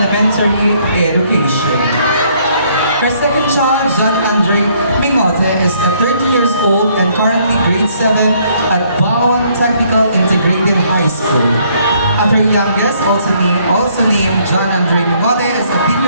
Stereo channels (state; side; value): inverted; both; correlation -0.66